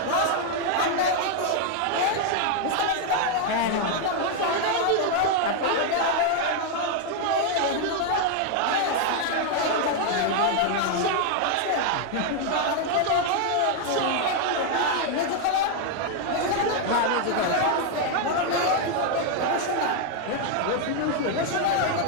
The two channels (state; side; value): different; both; correlation 0.00